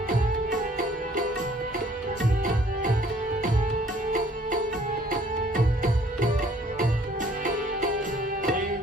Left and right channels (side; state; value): both; normal; correlation 0.58